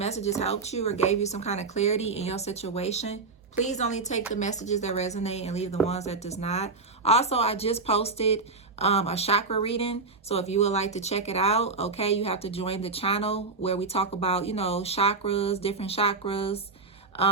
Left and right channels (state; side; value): quieter; left; 4.1 dB